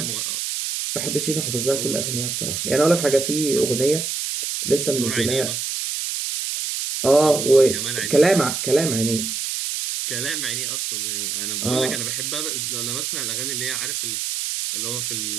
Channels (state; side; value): noise; right; hiss, 2 dB below the sound